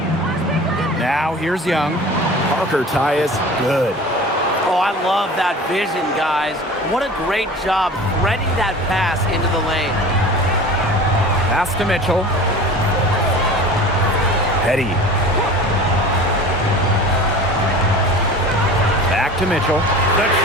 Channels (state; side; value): normal; both; correlation 0.39